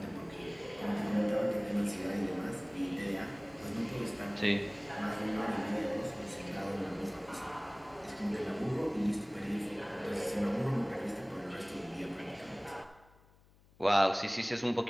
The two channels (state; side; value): noise; left; hum, 28 dB below the sound